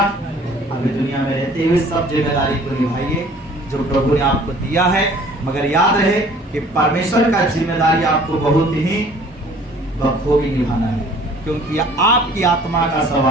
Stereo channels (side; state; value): both; normal; correlation 0.52